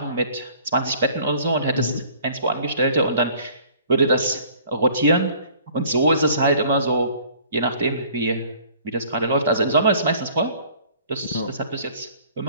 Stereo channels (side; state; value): both; inverted; correlation -0.54